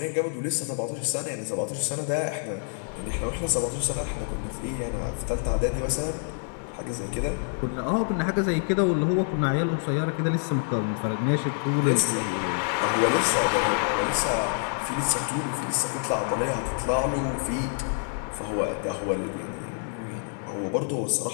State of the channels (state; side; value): silent; right; 58 dB below the other